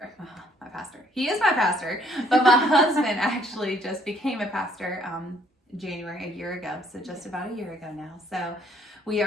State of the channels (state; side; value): normal; both; correlation 0.64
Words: he is my pastor, but my husband actually just became a pastor January, a year ago, so just about a year ago now. So we